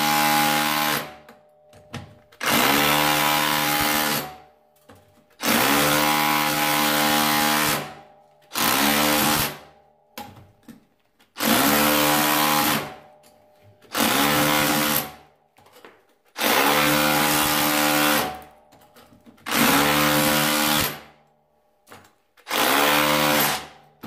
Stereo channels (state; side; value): identical; both; correlation 1.00